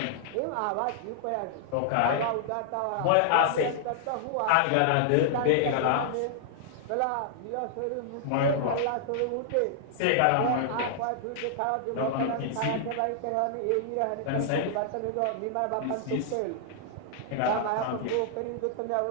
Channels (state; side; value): different; both; correlation -0.01